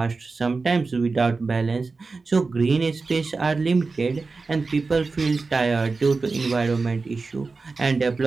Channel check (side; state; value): left; quieter; 4.1 dB